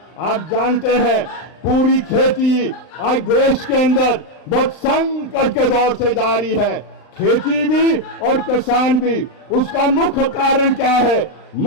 आप जानते हैं पूरी खेती आज देश के अंदर बहुत संकट के दौर से जारी है, खेती भी और किसान भी। उसका मुख्य कारण क्या है?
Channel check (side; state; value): right; late; 39 ms